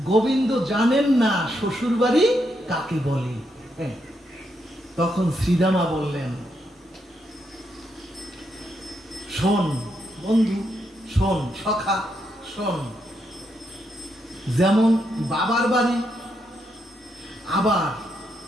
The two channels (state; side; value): normal; both; correlation 0.80